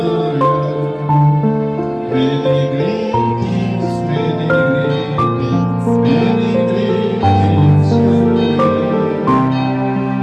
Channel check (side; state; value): both; identical; correlation 1.00